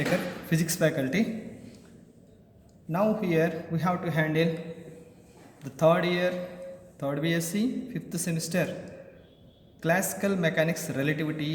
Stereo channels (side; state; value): both; identical; correlation 1.00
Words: physics faculty. Now here we have to handle the third year, third BSc, fifth semester, classical mechanics,